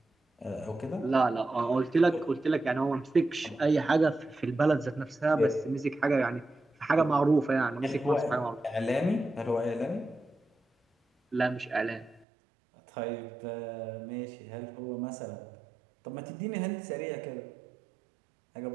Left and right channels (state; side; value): drops out; left; at 12.2 s